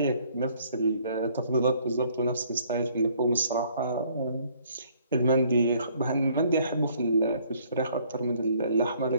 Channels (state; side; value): inverted; both; correlation -0.63